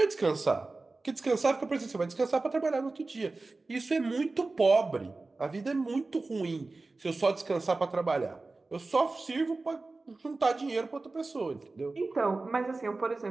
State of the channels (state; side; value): quieter; left; 3.5 dB